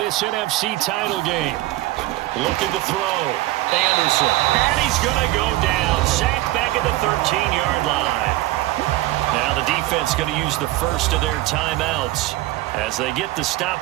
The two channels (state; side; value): quieter; left; 17.2 dB